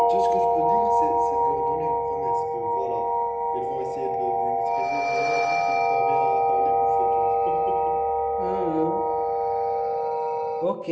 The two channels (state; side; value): identical; both; correlation 1.00